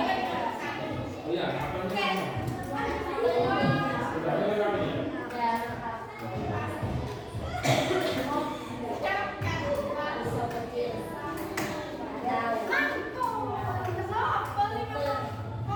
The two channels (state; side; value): identical; both; correlation 1.00